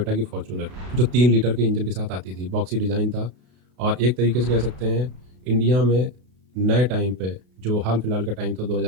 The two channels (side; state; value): left; late; 32 ms